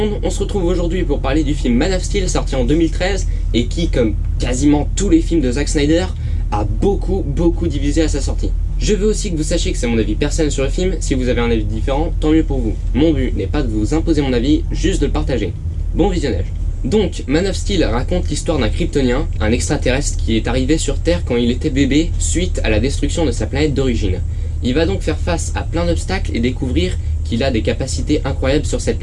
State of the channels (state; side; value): identical; both; correlation 1.00